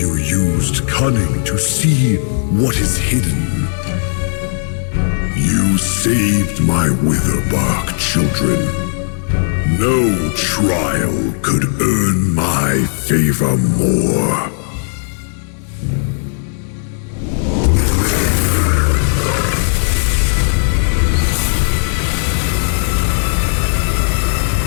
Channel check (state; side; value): silent; right; digital silence